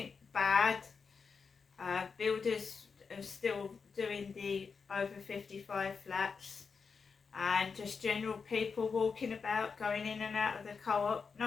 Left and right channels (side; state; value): right; quieter; 5.3 dB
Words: bad. Builders are still doing the over 55 flats, and just general people walking about, going in and out of the co-op.